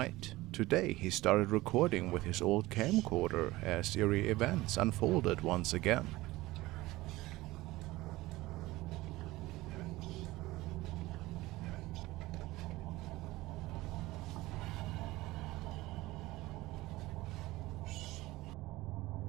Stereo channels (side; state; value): left; quieter; 18.8 dB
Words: Today he started recording with his old camcorder as eerie events unfolded once again.